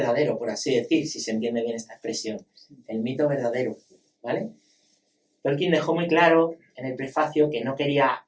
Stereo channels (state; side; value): identical; both; correlation 1.00